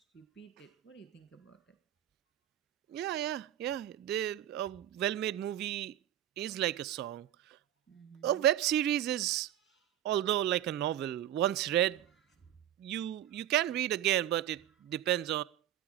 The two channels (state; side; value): quieter; left; 12.1 dB